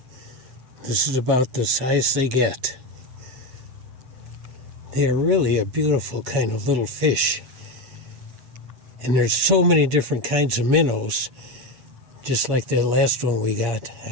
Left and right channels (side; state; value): left; late; 7.8 ms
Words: This is about the size they get. They are really a beautiful kind of little fish. And there's so many different kinds of minnows, just like that last one we got. I